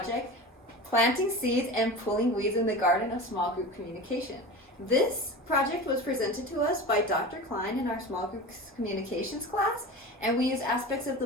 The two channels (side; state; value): both; normal; correlation 0.31